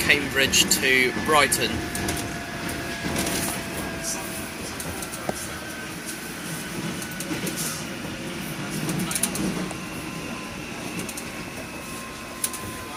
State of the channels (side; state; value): both; identical; correlation 1.00